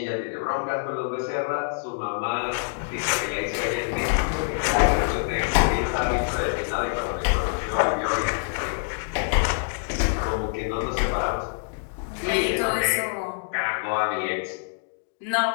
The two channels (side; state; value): right; silent; digital silence